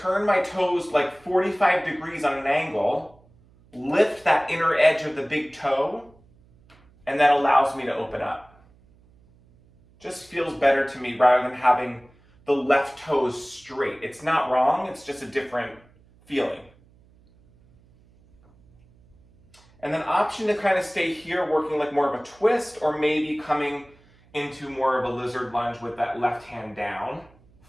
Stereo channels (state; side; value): noise; right; hum, 29 dB below the sound